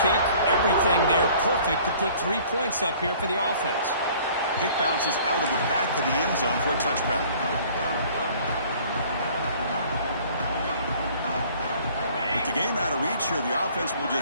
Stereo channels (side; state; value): both; inverted; correlation -0.53